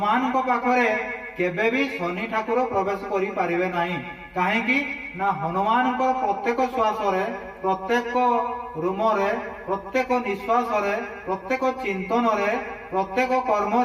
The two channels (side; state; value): both; identical; correlation 1.00